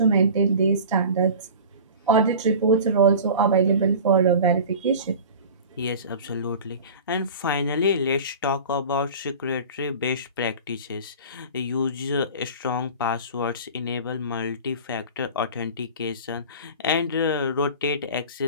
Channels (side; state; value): both; inverted; correlation -0.37